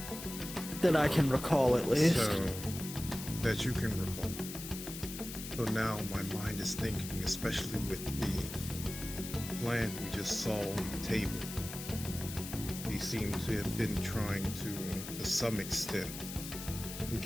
That I can recall, at least. So, that you can recall. So now my mind is thinking, especially with the plan we just saw on the table. He seemed to have been trying to some extent,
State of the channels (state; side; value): noise; left; hiss, 9 dB below the sound